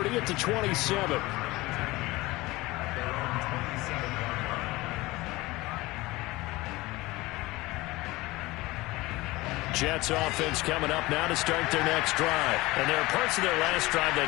at the 27. Jets offense coming up now to start their next drive. And there are parts of their last drive they'd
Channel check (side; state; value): right; quieter; 20.4 dB